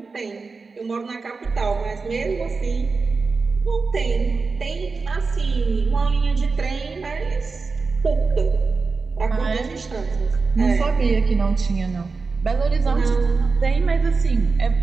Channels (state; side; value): quieter; left; 4.4 dB